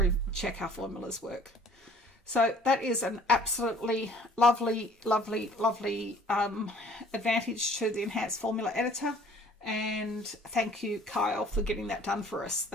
check our formulas work. So that is an absolutely lovely advantage to the enhanced formula editor, and thank you, Kyle, for getting that done for us.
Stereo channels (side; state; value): both; normal; correlation 0.53